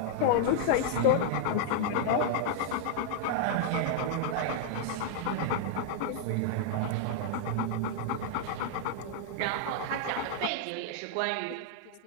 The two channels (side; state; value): both; different; correlation -0.01